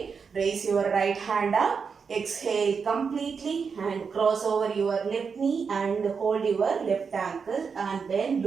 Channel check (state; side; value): quieter; left; 5.7 dB